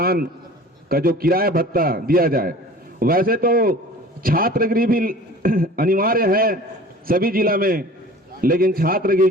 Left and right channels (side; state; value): both; normal; correlation 0.43